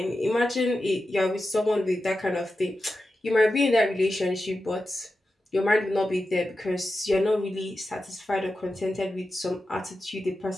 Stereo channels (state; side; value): normal; both; correlation 0.92